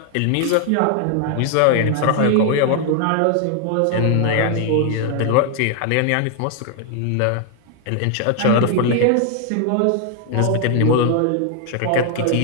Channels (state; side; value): different; both; correlation 0.00